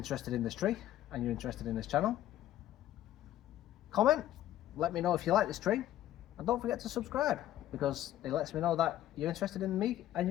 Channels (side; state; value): right; quieter; 13.1 dB